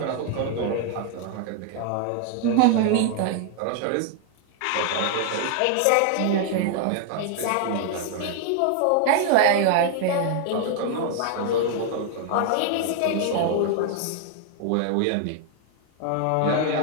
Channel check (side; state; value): both; different; correlation 0.00